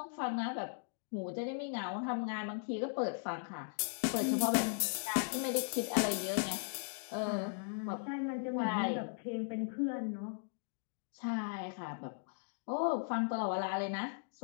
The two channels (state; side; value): silent; right; digital silence